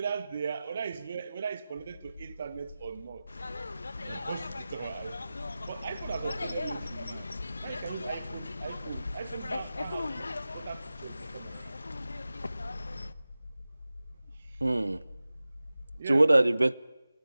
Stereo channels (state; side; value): inverted; both; correlation -0.95